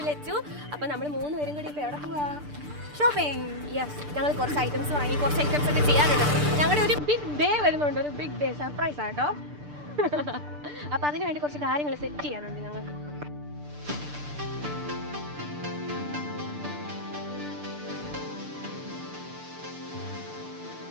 ലച്ചു. അപ്പം നമ്മൾ 3 പേരും കൂടി ഇപ്പോൾ എവിടെ പോവാ? ഷോപ്പിംഗ്. യെസ്, ഞങ്ങൾ കുറച്ച് ഐറ്റംസ് വാങ്ങി, കുറച്ച് ഐറ്റംസ് ഒക്കെ ചെയ്യാനുണ്ട്. ഞങ്ങളുടെ ഒരു ബിഗ് ഡേ വരുന്നുണ്ട്, ഒരു ബിഗ് ഡേ സർപ്രൈസ് ആട്ടോ. അപ്പം അതിന് വേണ്ടി കുറച്ച് കാര്യങ്ങൾ സെറ്റ് ചെയ്യാനുണ്ട് ഞങ്ങൾക്ക്.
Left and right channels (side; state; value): left; late; 6.8 ms